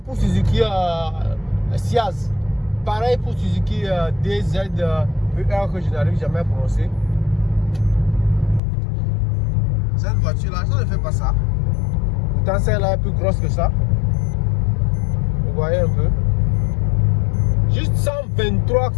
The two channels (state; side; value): drops out; right; at 8.6 s